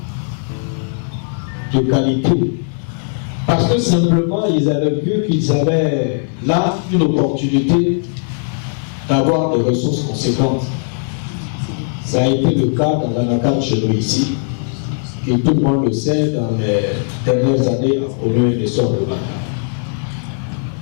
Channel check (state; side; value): silent; right; digital silence